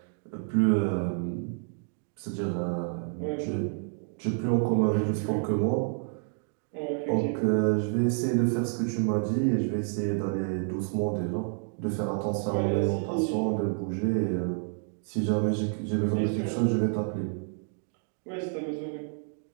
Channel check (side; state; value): left; silent; 55 dB below the other